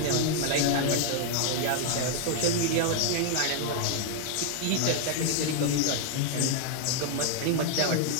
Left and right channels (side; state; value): both; different; correlation 0.00